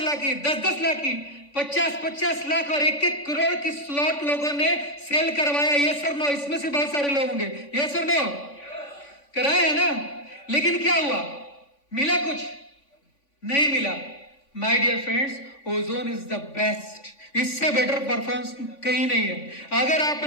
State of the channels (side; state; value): right; late; 3.5 ms